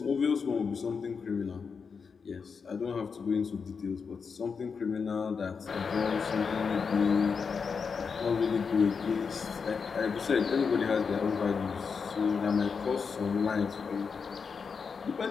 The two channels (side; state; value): right; quieter; 5.6 dB